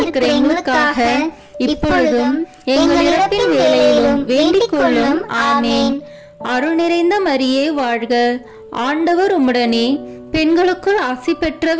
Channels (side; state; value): both; identical; correlation 1.00